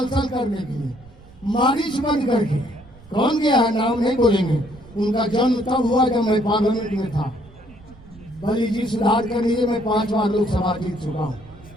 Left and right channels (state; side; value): noise; right; rumble, 23 dB below the sound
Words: करने के लिए, मारिच बन करके। कौन गया है नाम नहीं बोलेंगे। उनका जन्म तब हुआ जब मैं पार्लियामेंट में था। बलि जी सुधार कर लीजिए, मैं 5 बार लोकसभा जीत चुका हूँ।